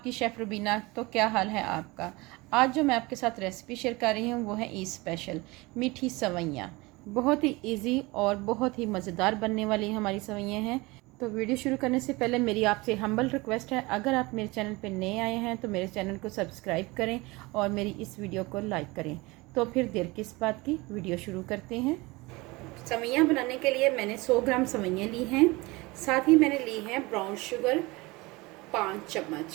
शेफ़ रुबीना। तो क्या हाल है आपका? आज जो मैं आपके साथ रेसिपी शेयर कर रही हूँ वो है ईद स्पेशल मीठी सवैयाँ। बहुत ही इजी और बहुत ही मज़ेदार बनने वाली हमारी सवैयाँ हैं। तो वीडियो शुरू करने से पहले मेरी आपसे हम्बल रिक्वेस्ट है, अगर आप मेरे चैनल पर नए आए हैं तो मेरे चैनल को सब्सक्राइब करें और मेरी इस वीडियो को लाइक करें। तो फिर देर किस बात की, वीडियो शुरू करते हैं। सवैयाँ बनाने के लिए मैंने 100 ग्राम सवैयाँ ली हैं। साथ ही मैंने ली है ब्राउन शुगर 5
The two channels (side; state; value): left; quieter; 23.2 dB